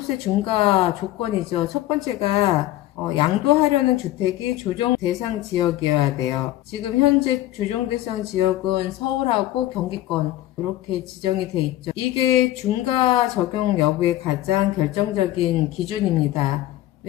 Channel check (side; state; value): right; quieter; 14.9 dB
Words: 중과 조건이죠. 첫 번째가 양도하려는 주택이 조정 대상 지역이어야 돼요. 지금 현재 조정 대상 지역은 서울하고 경기권 이렇게 지정이 돼 있죠. 이게 중과 적용 여부의 가장 결정적인 기준입니다.